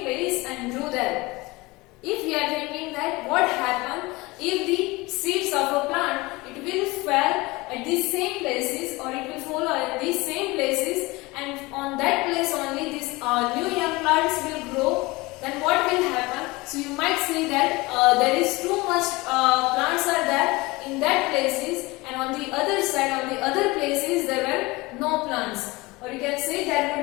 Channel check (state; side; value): quieter; right; 22.6 dB